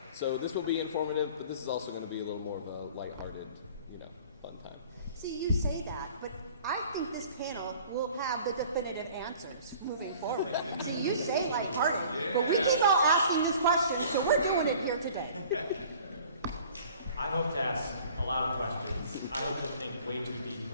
So this will be informative, but this is also going to be a little more of a lighthearted, fun time. See, you say that, but I think this panel will have the definitive answers moving forward. See, you say lighthearted, but we keep all asking these questions, so we're doing it here today. I hope to ask a lot of questions. I hope to think way too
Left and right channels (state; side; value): inverted; both; correlation -0.49